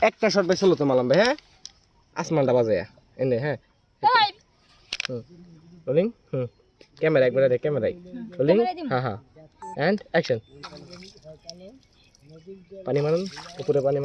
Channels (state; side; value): identical; both; correlation 1.00